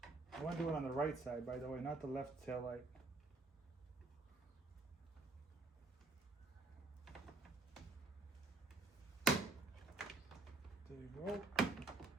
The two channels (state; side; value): quieter; left; 3.4 dB